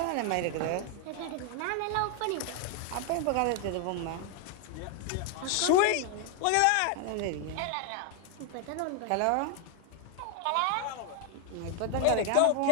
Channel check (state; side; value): different; both; correlation 0.01